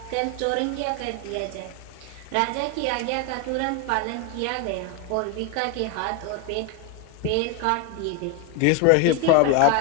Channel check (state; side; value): different; both; correlation 0.01